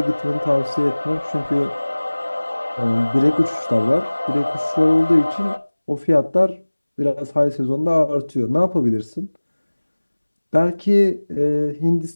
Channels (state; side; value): inverted; both; correlation -1.00